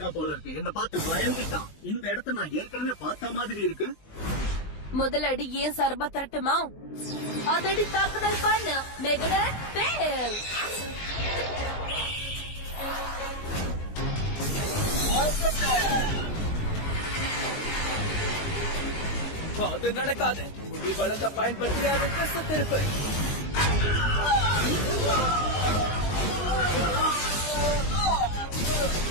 போல இருக்கு. என்ன பார்த்து பயந்துட்டான். இந்த இடத்த நான் ஏற்கனவே பார்த்த மாதிரி இருக்கு. முதல் அடி ஏன் சர்பா தரட்டுமா? அதடி தாக்குதல் பண்ண மெகா ஃபெயில். அது நடக்காது. நீ பலத்தை பயன்படுத்தி அதை திசை திருப்பு.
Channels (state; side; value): late; right; 19 ms